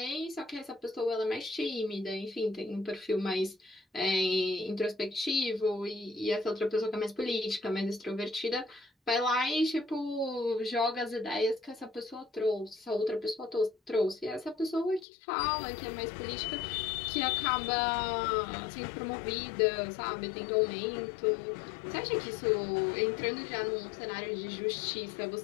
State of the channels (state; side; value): drops out; right; at 15.1 s